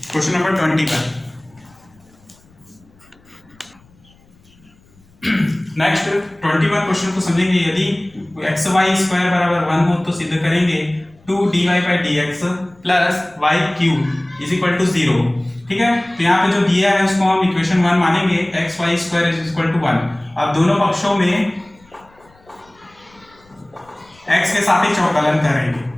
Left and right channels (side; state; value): left; noise; rumble, 30 dB below the sound